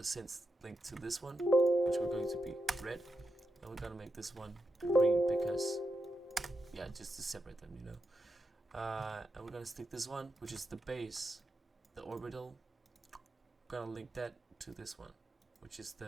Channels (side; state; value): both; normal; correlation 0.86